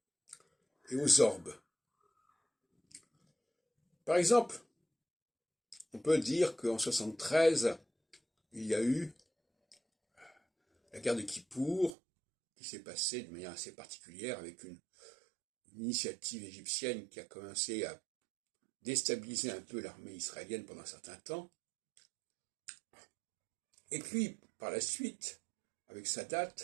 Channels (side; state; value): left; drops out; at 11.9 s